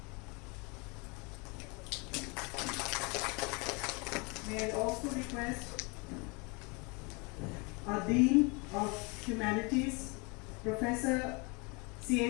May I also request our Dean of Humanities, Professor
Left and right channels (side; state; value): right; quieter; 30.0 dB